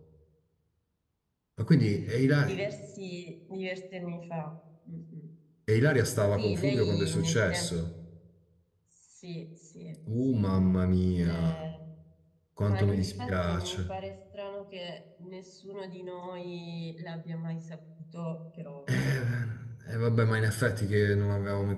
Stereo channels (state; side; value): identical; both; correlation 1.00